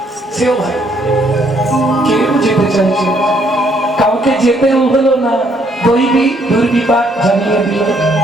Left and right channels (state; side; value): normal; both; correlation 0.69